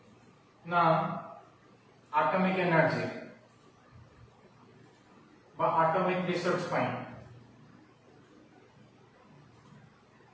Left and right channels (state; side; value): identical; both; correlation 1.00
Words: ना एटॉमिक एनर्जी बा एटॉमिक रिसर्च पाई